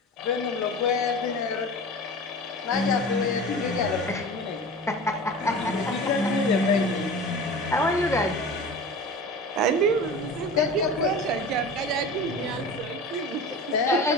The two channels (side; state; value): both; normal; correlation 0.35